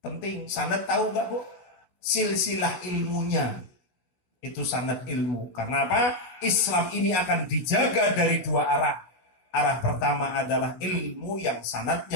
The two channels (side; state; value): right; late; 16 ms